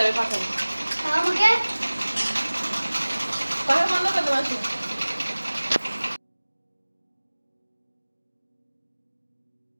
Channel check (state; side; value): inverted; both; correlation -1.00